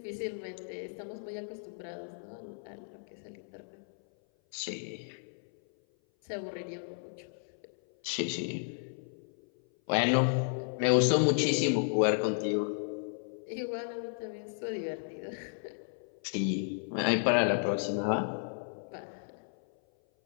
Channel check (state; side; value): silent; right; 55 dB below the other